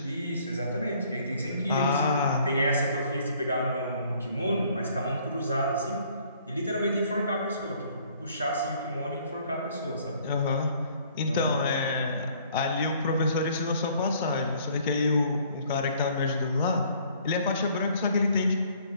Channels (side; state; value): both; inverted; correlation -0.60